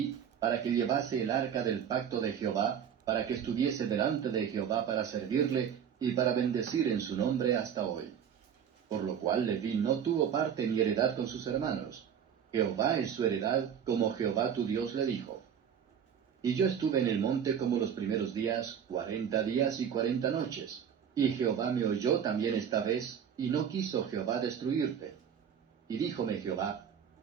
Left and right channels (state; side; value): quieter; left; 8.3 dB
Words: para que llevase el arca del pacto de Jehová, para que estuviese delante de Jehová para servirle, y para bendecir en su nombre hasta hoy. Por lo cual Leví no tuvo parte ni heredad con sus hermanos. Jehová es su heredad, como Jehová tu Dios le dijo. Y yo estuve en el monte como los primeros días, 40 días y 40 noches. Y Jehová me oyó también esta vez, y no quiso Jehová destruirte. Y díjome Jehová: